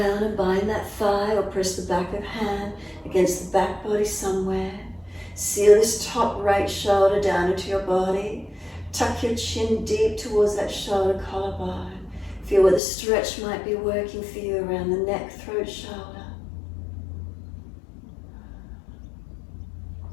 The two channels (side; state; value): right; drops out; at 12.8 s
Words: and bind that thigh or press the back of hand against the back body somewhere. Seal this top right shoulder down into your body. Tuck your chin deep towards that shoulder collarbone. Feel where the stretch might be working for you around the neck, throat, shoulder.